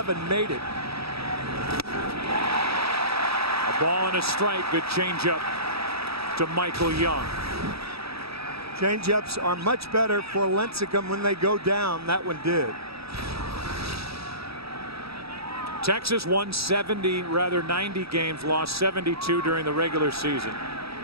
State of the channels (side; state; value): left; late; 0.77 ms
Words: made it. A ball and a strike. Good changeup to Michael Young. Changeups are much better for Lincecum when they go down. That one did. Texas won 90 games, lost 72 during the regular season.